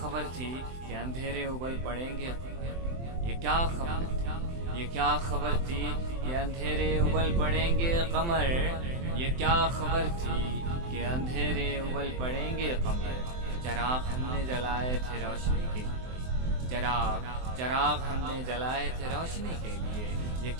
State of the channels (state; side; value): late; left; 23 ms